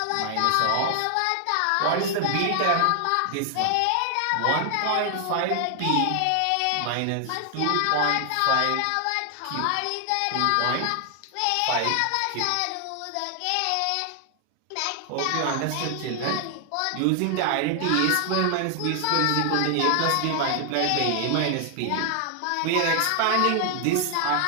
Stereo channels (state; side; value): different; both; correlation 0.00